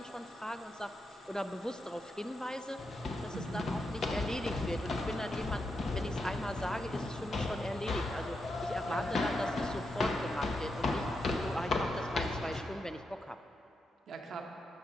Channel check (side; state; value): both; normal; correlation 0.85